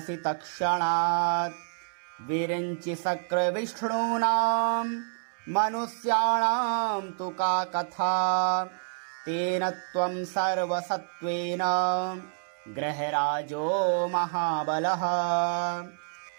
तत्क्षणात् विरिञ्चि शक्रविष्णूनां मनुष्याणां तु का कथा तेन त्वं सर्वसत्त्वेन गृहराजो महाबलः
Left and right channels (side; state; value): left; silent; 59 dB below the other